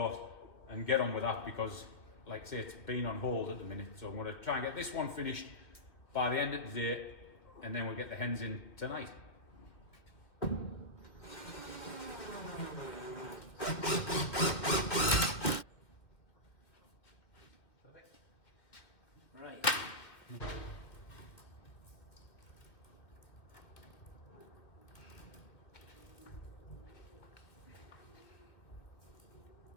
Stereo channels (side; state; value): right; late; 2.0 ms